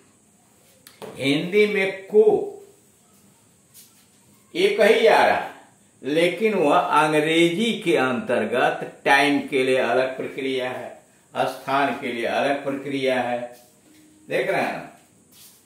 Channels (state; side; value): identical; both; correlation 1.00